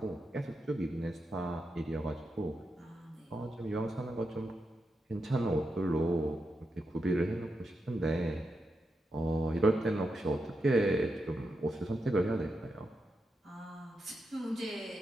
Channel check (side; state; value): both; normal; correlation 0.86